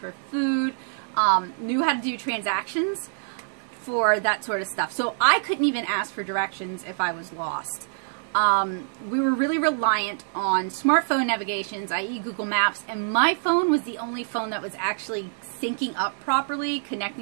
food, knew how to do transactions for that sort of stuff. So I couldn't even ask for directions if I was lost. We were really reliant on smartphone navigations, i.e. Google Maps, and my phone was the only phone that was actually syncing up properly,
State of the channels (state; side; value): silent; left; digital silence